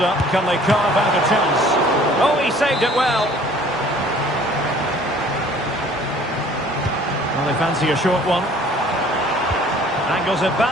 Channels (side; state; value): both; normal; correlation 0.53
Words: Can they carve out a chance? Oh, he saved it well. Well, they fancy a short one. Angles it